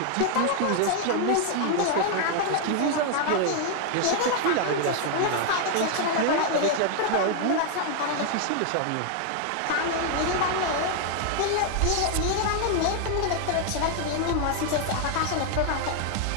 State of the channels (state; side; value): different; both; correlation 0.00